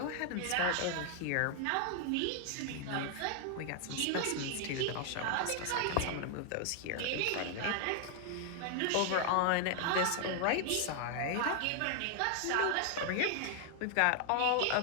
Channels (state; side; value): different; both; correlation 0.00